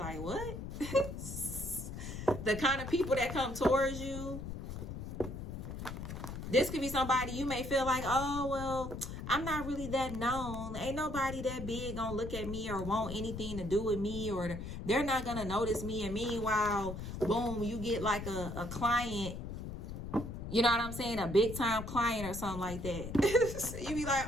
what? The kind of people that come towards you. This could be somebody you may feel like, oh, well, I'm not really that known. Ain't nobody that big gonna look at me or want anything to do with me, or they're not gonna notice me. And meanwhile, boom, you get like a client, you know what I'm saying? A big time client or something like that. You be like,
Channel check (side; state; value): left; noise; rumble, 7 dB below the sound